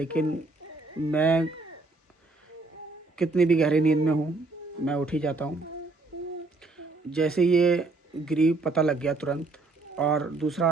मैं कितनी भी गहरी नींद में हूँ, मैं उठ ही जाता हूँ। जैसे ये गिरी, पता लग गया तुरंत। और दूसरा,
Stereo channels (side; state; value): left; quieter; 3.4 dB